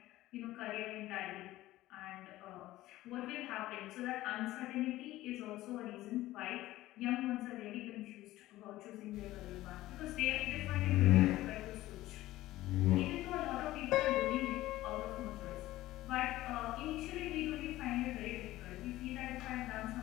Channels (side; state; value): right; quieter; 16.2 dB